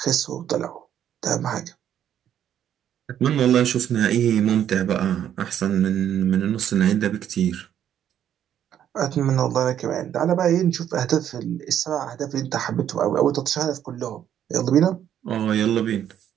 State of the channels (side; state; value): left; quieter; 10.1 dB